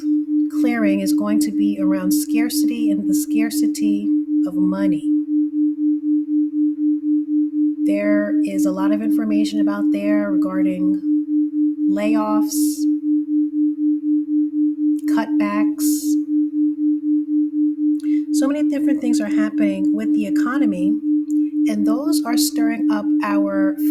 clearing is going to be around scarcity and the scarcity of money. There is a lot of information about there regarding layoffs, cutbacks. So many different things are happening with the economy, and those are stirring up our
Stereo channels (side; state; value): both; identical; correlation 1.00